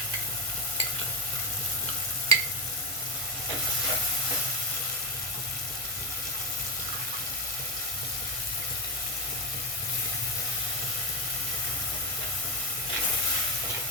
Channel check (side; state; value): both; normal; correlation 0.10